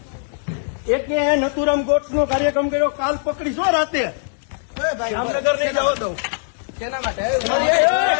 એક નથુરામ ગોટ્સ નો કાર્યક્રમ કર્યો, કાલ પકડીશો રાતે. જામનગર નહીં જવા દઉં. કેના માટે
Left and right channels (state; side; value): silent; right; digital silence